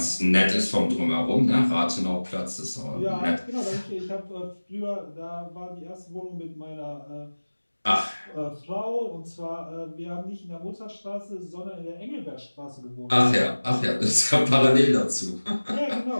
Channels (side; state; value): both; inverted; correlation -1.00